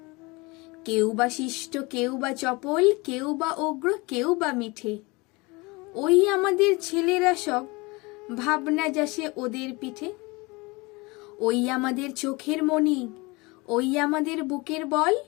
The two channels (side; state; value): right; quieter; 25.1 dB